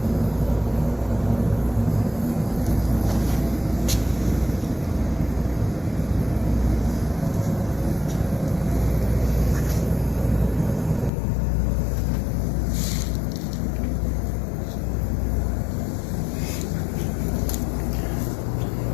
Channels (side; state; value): right; drops out; at 11.1 s